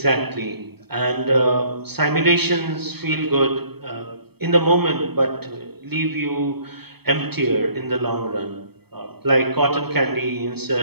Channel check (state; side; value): late; left; 0.97 ms